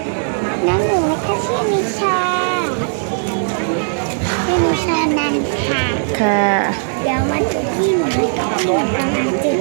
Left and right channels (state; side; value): silent; left; digital silence